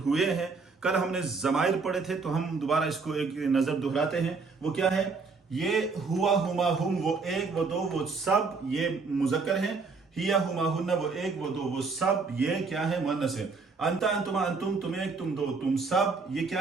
हैं। कल हमने ज़माइर पढ़े थे, तो हम दोबारा इसको एक नज़र दोहराते हैं। वो क्या है? ये हुआ, हुमा, हुम, वो एक, वो दो, वो सब, ये मुज़क्कर है। हिया, हुमा, हुन्ना, वो एक, वो दो, वो सब, ये क्या है? मुअन्नस है। अंता, अंतुमा, अंतुम, तुम एक, तुम दो, तुम सब, ये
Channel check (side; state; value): left; quieter; 4.4 dB